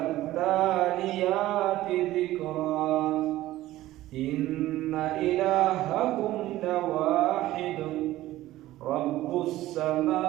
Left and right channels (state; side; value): quieter; left; 15.7 dB